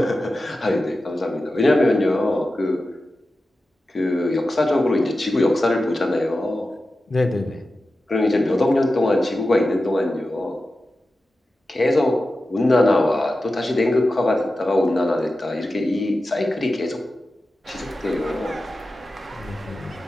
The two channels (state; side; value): normal; both; correlation 0.93